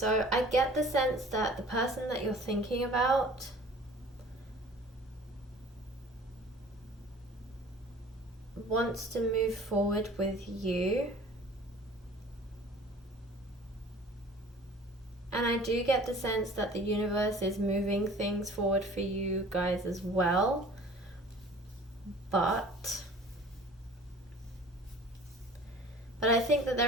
I get the sense that the person that you're thinking about wants to move forward with you, And I do get the sense that the universe is moving things forward for you guys as well. But I think that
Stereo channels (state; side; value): normal; both; correlation 0.47